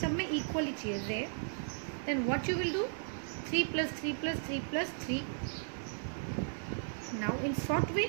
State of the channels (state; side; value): silent; left; digital silence